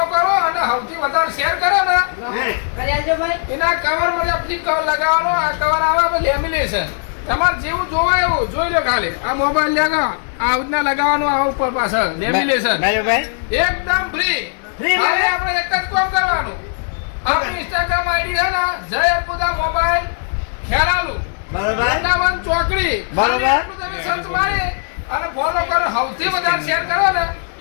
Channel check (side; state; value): right; silent; 59 dB below the other